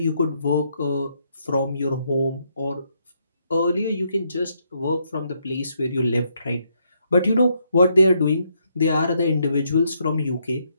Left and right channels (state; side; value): inverted; both; correlation -0.75